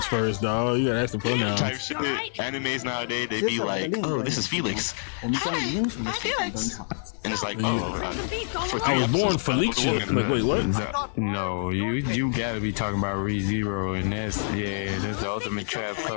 first, dog. You gotta ask the pronouns. Animes nowadays, they be like, oh, this is Felix. And it's like, oh, I was born Felicia. Like, wait, what? No, you gotta be talking about ReZero, and that's the ultimate trap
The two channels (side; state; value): right; silent; digital silence